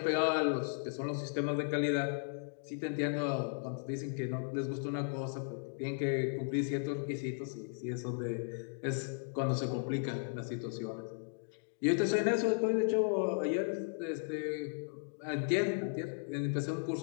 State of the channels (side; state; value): right; silent; digital silence